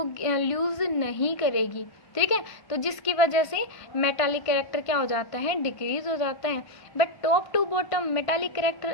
लूज नहीं करेगी, ठीक है। तो जिसकी वजह से मेटालिक कैरेक्टर क्या हो जाता है, डिक्रीज हो जाता है। But top to bottom metallic character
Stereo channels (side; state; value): right; late; 1.5 ms